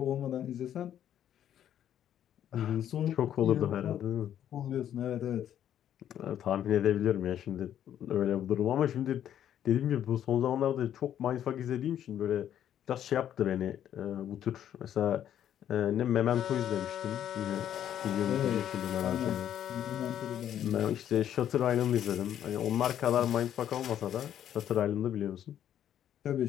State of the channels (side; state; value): right; quieter; 10.4 dB